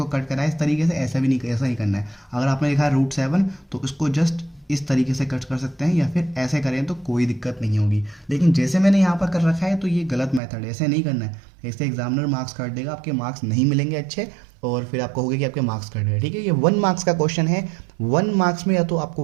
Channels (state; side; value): drops out; left; at 10.4 s